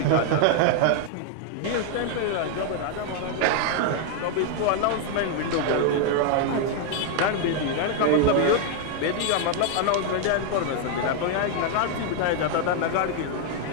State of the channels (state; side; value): different; both; correlation 0.00